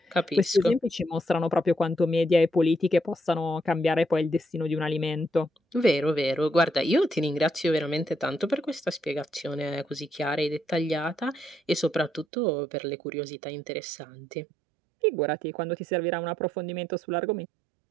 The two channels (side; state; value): left; drops out; at 12.2 s